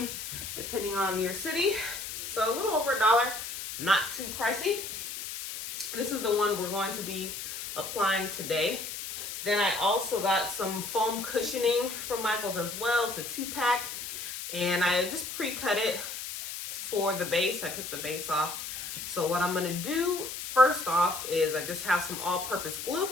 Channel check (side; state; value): left; noise; hiss, 7 dB below the sound